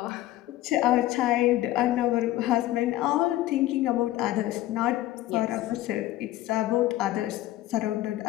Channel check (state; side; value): quieter; right; 15.4 dB